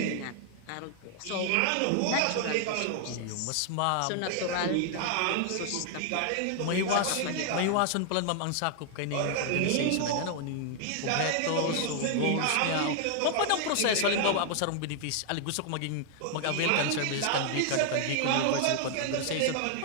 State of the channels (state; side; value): different; both; correlation 0.00